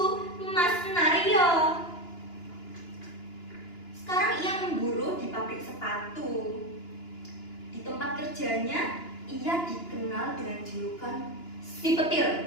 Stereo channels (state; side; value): late; right; 2.9 ms